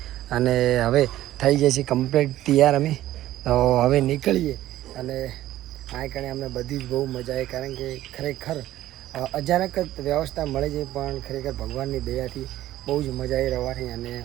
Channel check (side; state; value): left; quieter; 14.2 dB